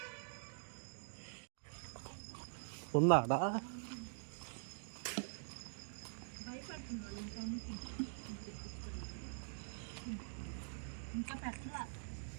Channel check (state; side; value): silent; left; digital silence